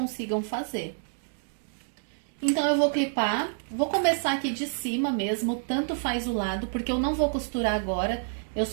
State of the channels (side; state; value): left; silent; 59 dB below the other